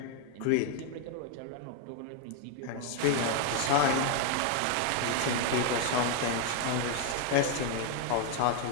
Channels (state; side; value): different; both; correlation 0.01